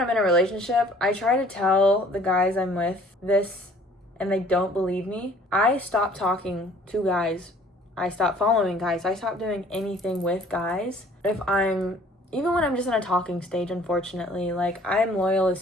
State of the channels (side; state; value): both; normal; correlation 0.54